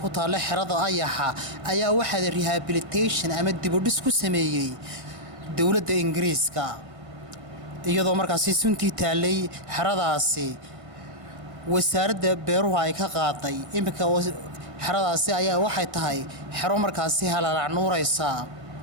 ku taal xirada ayaxa ayaa waxa rehabilitation ama dib u dhis ku sameeyay dawladda Ingiriiska iyadoo markaasi suntii taalay xiradaasi wasaaradda beeruhu ay ka qaaday imika xiradaasi ayaa waxay tahay xiro markaasi halalac nuuraysa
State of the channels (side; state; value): left; late; 1.6 ms